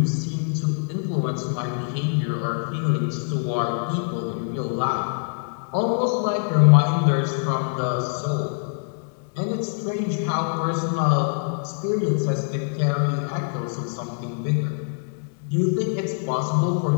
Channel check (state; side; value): silent; right; digital silence